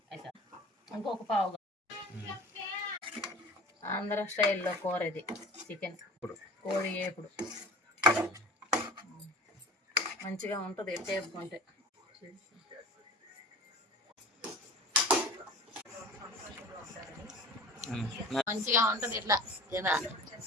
అయితే ఇంకొక పావు. ఆంధ్ర స్టైల్లో కూర ఇది చికెన్ కోడి ఏపుడు మంచిగా ఉంటుంది వేపుకుంటే. మంచిగా ఉంటుంది ఇట్లా ఇలా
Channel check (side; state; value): both; normal; correlation 0.39